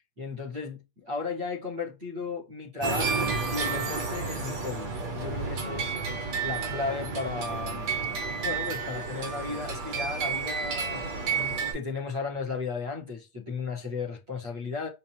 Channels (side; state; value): left; late; 8.5 ms